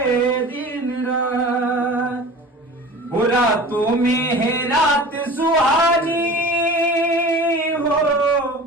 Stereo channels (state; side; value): normal; both; correlation 0.38